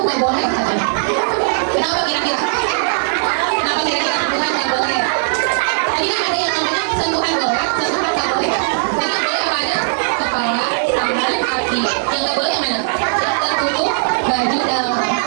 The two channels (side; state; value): left; silent; 68 dB below the other